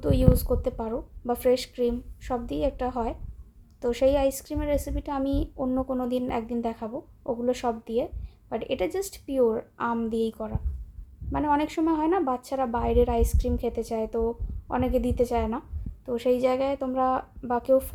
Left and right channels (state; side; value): identical; both; correlation 1.00